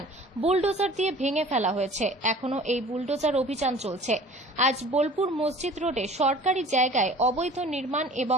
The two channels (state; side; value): normal; both; correlation 0.46